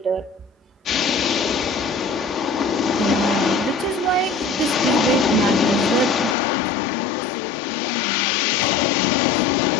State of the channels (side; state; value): right; drops out; at 6.4 s